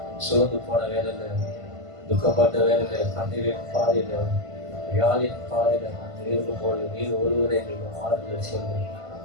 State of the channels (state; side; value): late; left; 1.5 ms